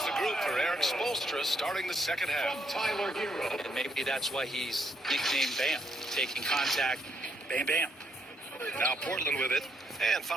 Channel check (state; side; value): normal; both; correlation 0.74